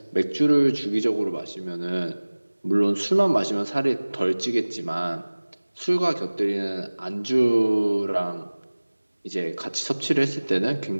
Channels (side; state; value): both; inverted; correlation -1.00